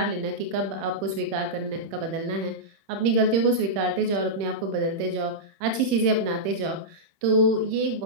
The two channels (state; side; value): late; left; 31 ms